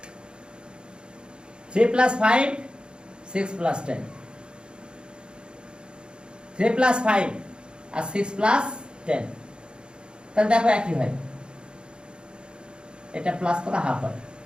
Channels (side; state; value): left; late; 0.051 ms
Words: 3 plus 5, 6 plus 10। 3 plus 5 আর 6 প্লাস 10, তাহলে দেখো একই হয়। এটা প্লাস করা হাফ হয়।